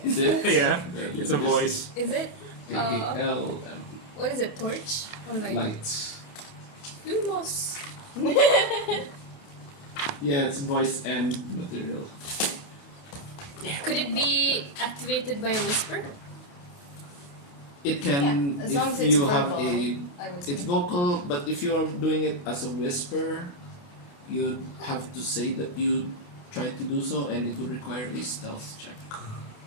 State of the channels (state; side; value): late; right; 28 ms